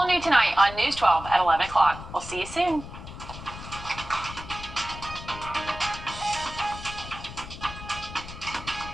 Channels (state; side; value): noise; left; rumble, 12 dB below the sound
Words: new tonight on News 12 at 11 o'clock. We'll see you soon.